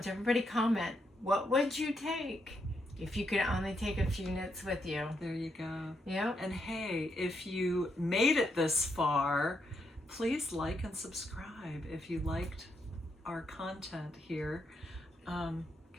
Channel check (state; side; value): normal; both; correlation 0.79